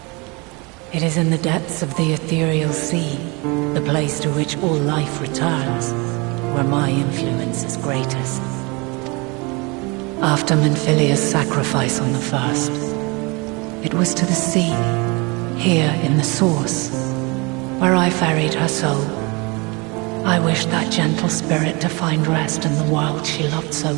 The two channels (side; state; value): left; quieter; 28.1 dB